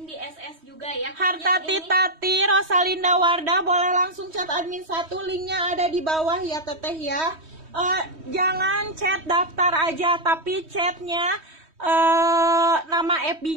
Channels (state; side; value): late; left; 3.1 ms